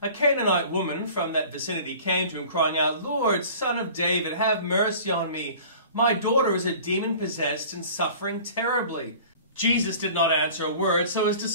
A Canaanite woman from that vicinity came to him, crying out, "Lord, Son of David, have mercy on me. My daughter is a demon-possessed and suffering terribly." Jesus did not answer a word, so his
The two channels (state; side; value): inverted; both; correlation -0.44